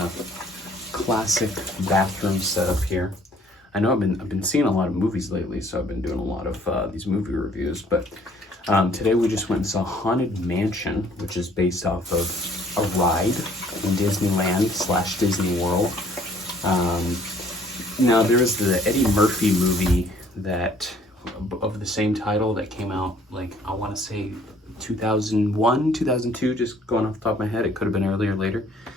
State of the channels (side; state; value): both; normal; correlation 0.59